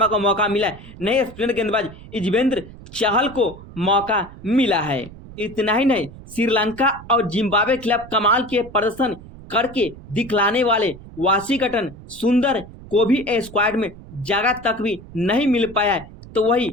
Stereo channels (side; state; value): right; noise; rumble, 17 dB below the sound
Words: को मौका मिला है, नहीं स्पिनर गेंदबाज युजवेंद्र चहल को मौका मिला है। इतना ही नहीं, श्रीलंका और जिम्बाब्वे के खिलाफ कमाल के प्रदर्शन करके दिखलाने वाले वाशिंगटन सुंदर को भी स्क्वाड में जगह तक भी नहीं मिल पाया है, तो वही